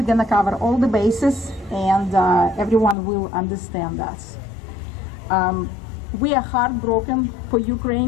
gonna cover all the bases, and everyone will understand us. We are heartbroken for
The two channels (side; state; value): right; drops out; at 3.0 s